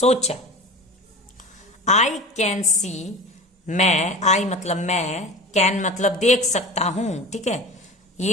आई कैन सी मैं, आई मतलब मैं, कैन मतलब देख सकता हूं, ठीक है।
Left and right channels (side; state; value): both; normal; correlation 0.34